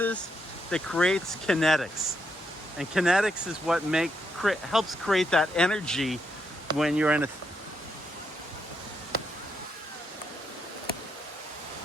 that creates kinetics, and kinetics is what helps create that energy when you're in a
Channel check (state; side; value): normal; both; correlation 0.79